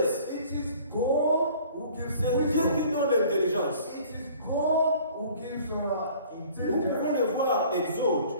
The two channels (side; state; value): both; inverted; correlation -0.51